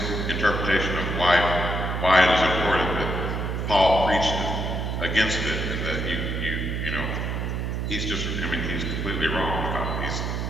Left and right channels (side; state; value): right; noise; hum, 2 dB below the sound